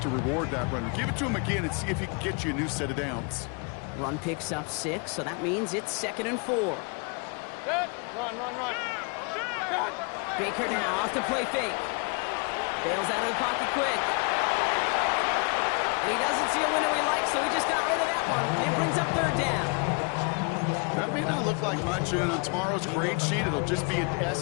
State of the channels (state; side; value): quieter; right; 33.8 dB